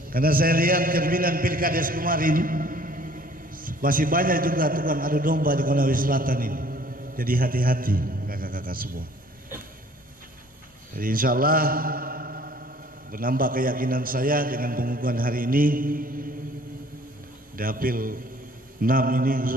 Karena saya lihat cerminan Pilkades kemarin, masih banyak juga tukang adu domba di Konawe Selatan ini. Jadi hati-hati kakak-kakak semua. Jadi insya Allah menambah keyakinan saya dengan pengukuhan hari ini, Dapil 6 ini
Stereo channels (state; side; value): normal; both; correlation 0.55